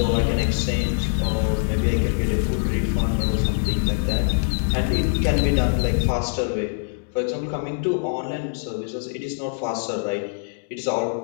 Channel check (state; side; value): silent; right; digital silence